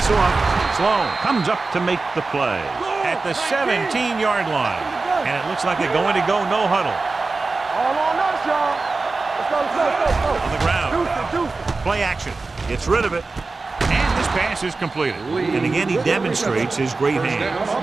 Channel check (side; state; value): left; quieter; 3.8 dB